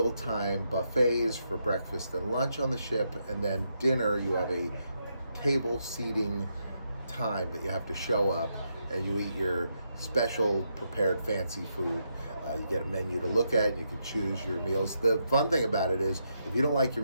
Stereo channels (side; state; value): both; inverted; correlation -0.81